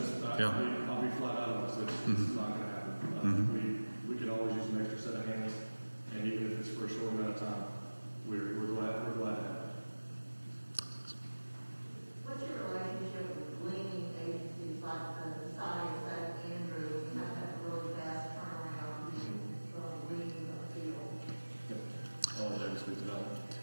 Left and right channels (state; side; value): inverted; both; correlation -1.00